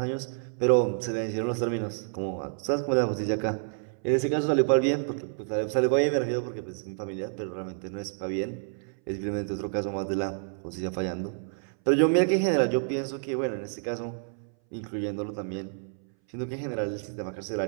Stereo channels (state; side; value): silent; left; 59 dB below the other